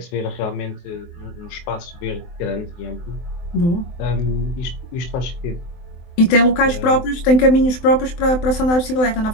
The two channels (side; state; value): right; late; 23 ms